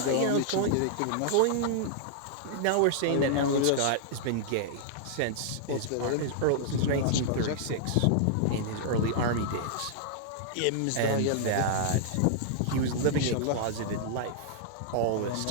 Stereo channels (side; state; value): both; different; correlation -0.01